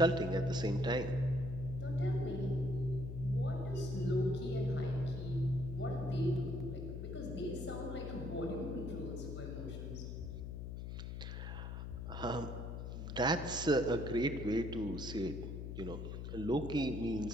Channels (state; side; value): noise; left; hum, 6 dB below the sound